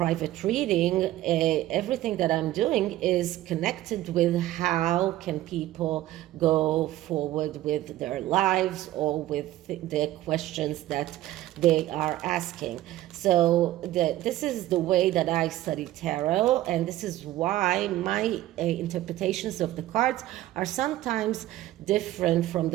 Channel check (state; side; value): quieter; left; 15.0 dB